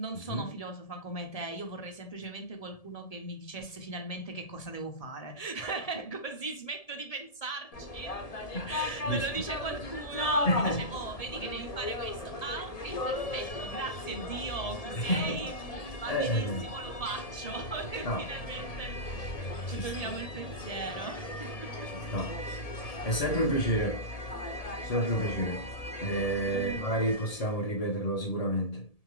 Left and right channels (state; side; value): late; right; 1.7 ms